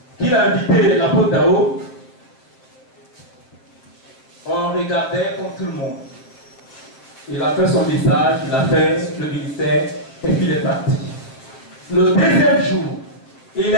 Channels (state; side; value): late; right; 7.8 ms